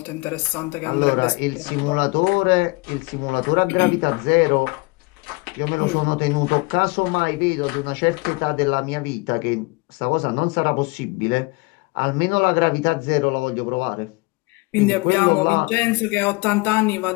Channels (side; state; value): right; quieter; 26.5 dB